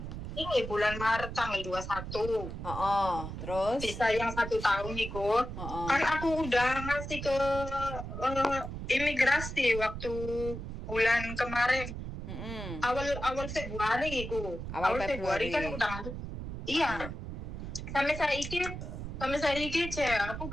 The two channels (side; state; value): right; noise; rumble, 7 dB below the sound